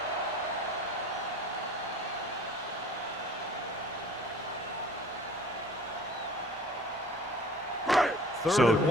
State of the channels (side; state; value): both; normal; correlation 0.47